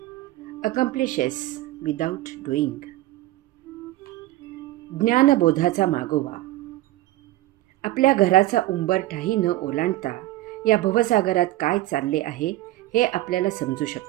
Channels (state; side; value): quieter; left; 16.5 dB